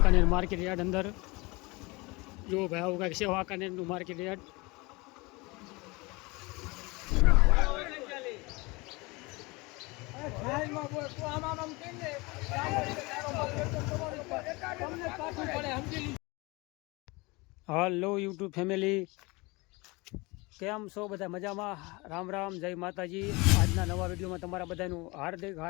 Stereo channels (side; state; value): right; quieter; 25.0 dB